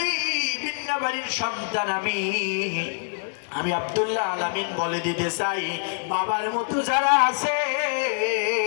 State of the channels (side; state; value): right; silent; digital silence